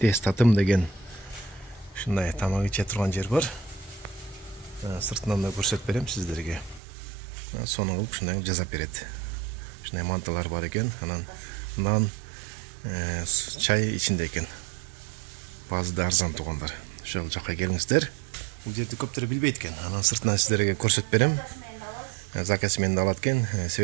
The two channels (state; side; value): drops out; left; at 6.8 s